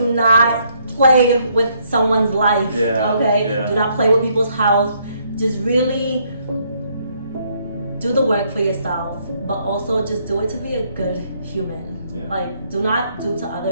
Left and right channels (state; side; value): inverted; both; correlation -0.70